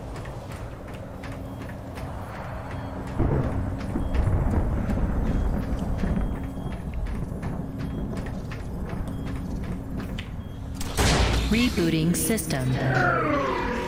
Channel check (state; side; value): identical; both; correlation 1.00